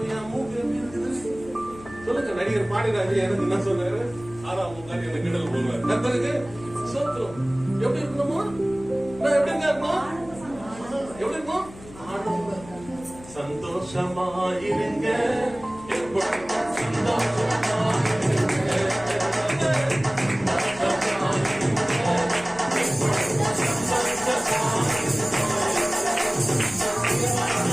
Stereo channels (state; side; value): noise; left; hum, 18 dB below the sound